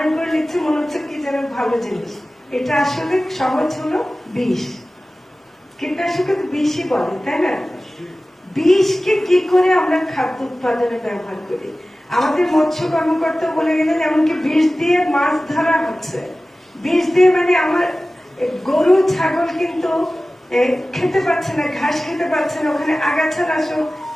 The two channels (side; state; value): both; normal; correlation 0.96